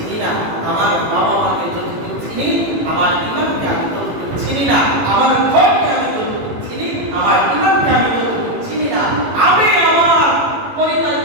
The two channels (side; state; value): left; late; 18 ms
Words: না, আমার বাবা মাকে যতটুকু চিনি, আমার ইমানকে আমি ততটুকু চিনি না, আমার ঘরকে আমি যতটুকু চিনি, আমার ইমানকে আমি যতটুকু চিনি না, আমি আমার